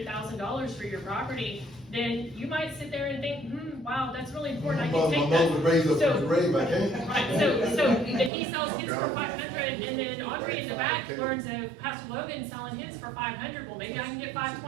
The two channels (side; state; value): left; drops out; at 8.3 s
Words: for your property, then you might sit there and think, wow, that's really important, I can take that. So if he sells his for $500, and then Audrey in the back learns of Pastor Logan selling his for $500, well, maybe I can get